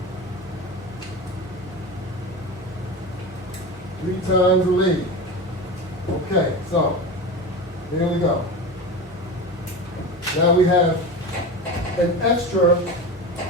3 times the lead. Okay, so here we go. Now we have an extra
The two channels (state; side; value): normal; both; correlation 0.26